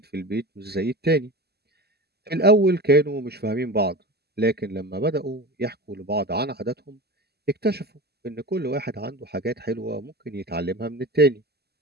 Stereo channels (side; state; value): left; late; 0.47 ms